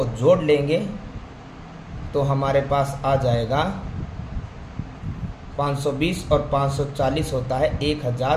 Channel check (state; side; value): identical; both; correlation 1.00